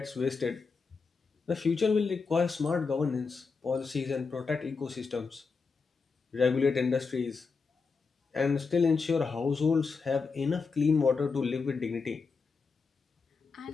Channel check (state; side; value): quieter; right; 4.8 dB